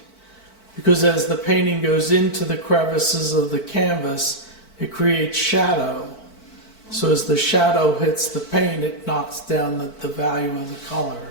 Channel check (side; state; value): right; late; 4.5 ms